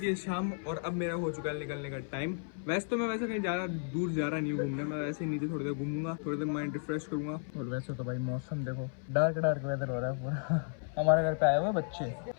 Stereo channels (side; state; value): right; silent; 55 dB below the other